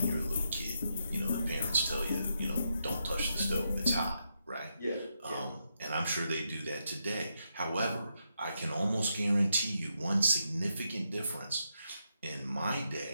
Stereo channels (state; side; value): inverted; both; correlation -0.82